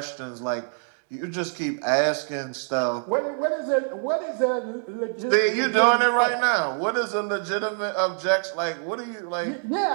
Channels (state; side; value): silent; left; 62 dB below the other